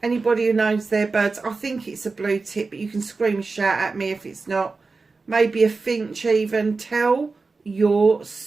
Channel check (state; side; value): quieter; left; 4.1 dB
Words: Anybody who knows their birds, I think it's a blue tip, but you can scream and shout at me if it's not. Maybe a finch even. Tell your